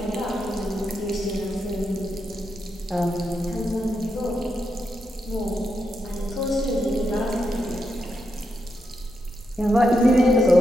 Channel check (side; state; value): both; normal; correlation 0.84